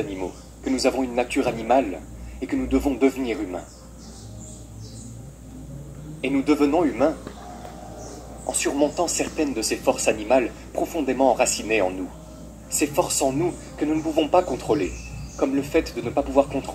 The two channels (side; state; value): both; identical; correlation 1.00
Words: que nous avons une nature animale et que nous devons devenir humains. Et nous devenons humains en surmontant certaines de ces forces animales profondément enracinées en nous. Ces forces en nous que nous ne pouvons pas contrôler, comme le fait de ne pas pouvoir